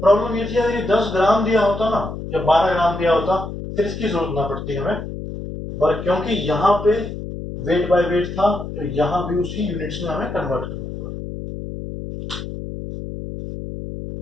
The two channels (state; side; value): noise; left; hum, 8 dB below the sound